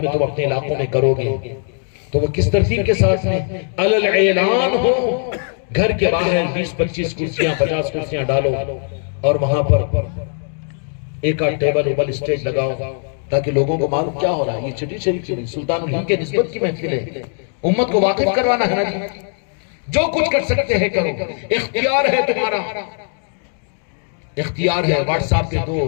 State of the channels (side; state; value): right; silent; 56 dB below the other